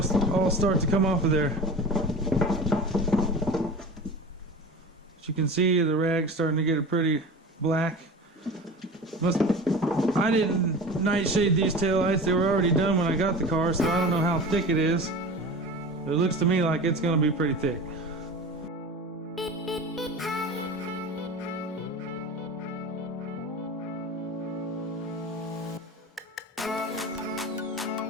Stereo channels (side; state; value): both; normal; correlation 0.33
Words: all start to come off of there. As you can see, the rag's starting to get a pretty black. I didn't nightshade these taillights. They were already done when I got the car, so I don't know how thick it is. It looks to me like it's going to be pretty thick.